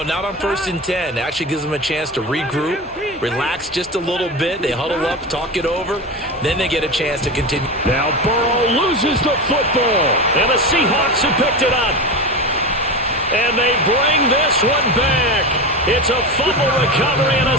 not on 1st and 10. Actually gives them a chance to regroup, relax just a little bit. They huddle up, talk it over. Then they get a chance to continue. Now Burrow loses the football, and the Seahawks have picked it up. And they bring this one back. It's a fumble recovery and a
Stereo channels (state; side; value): normal; both; correlation 0.23